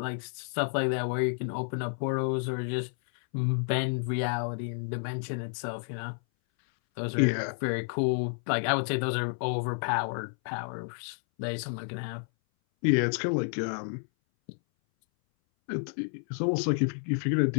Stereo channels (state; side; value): silent; right; 58 dB below the other